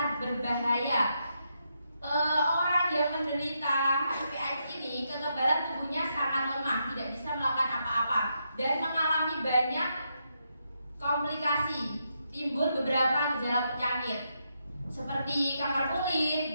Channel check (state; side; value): inverted; both; correlation -0.81